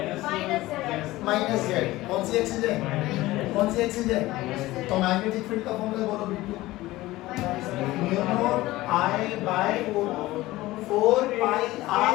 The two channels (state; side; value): quieter; right; 17.9 dB